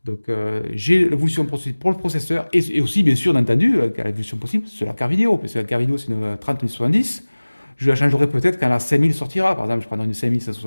Donc j'ai l'évolution pour le processeur et aussi bien sûr entendu l'évolution possible sur la carte vidéo, parce que la carte vidéo c'est une 3070. Je la changerai peut-être quand la 5000 sortira, par exemple je prendrai une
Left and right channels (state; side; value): inverted; both; correlation -1.00